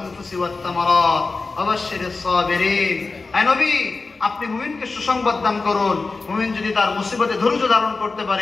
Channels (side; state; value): right; quieter; 3.9 dB